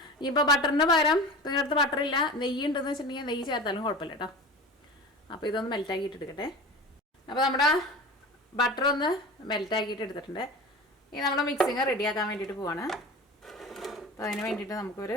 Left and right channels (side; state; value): both; normal; correlation 0.33